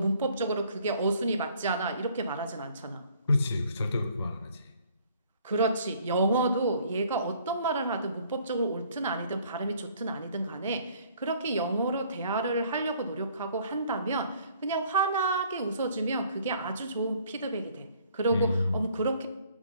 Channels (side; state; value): both; inverted; correlation -0.59